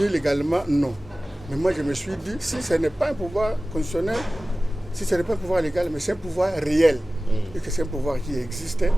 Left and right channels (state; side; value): normal; both; correlation 0.97